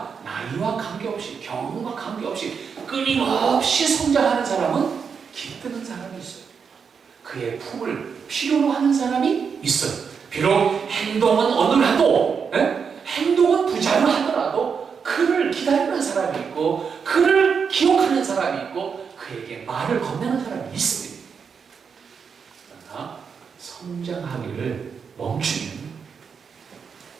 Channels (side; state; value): left; quieter; 6.2 dB